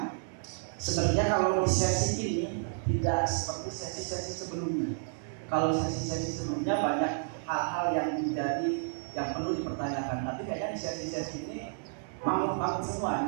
sebenarnya kalau di sesi ini tidak seperti sesi-sesi sebelumnya. Kalau sesi-sesi sebelumnya banyak hal-hal yang menjadi yang perlu dipertanyakan, tapi kayaknya di sesi-sesi ini mangut-mangut semua.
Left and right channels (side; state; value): left; silent; digital silence